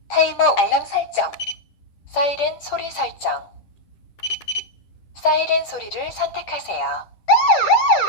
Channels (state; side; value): late; right; 10 ms